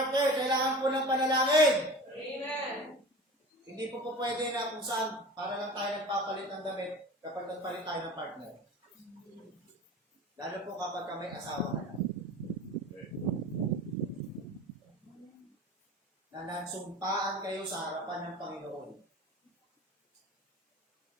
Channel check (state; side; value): normal; both; correlation 0.37